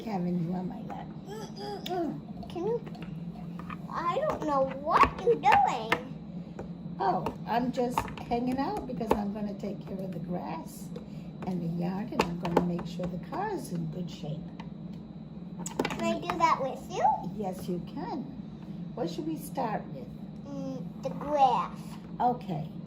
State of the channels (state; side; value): identical; both; correlation 1.00